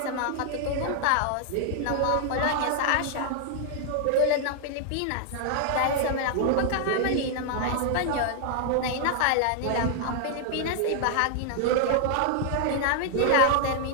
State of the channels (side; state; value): both; different; correlation 0.00